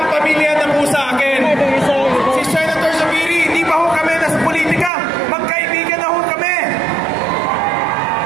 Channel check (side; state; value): left; drops out; at 4.9 s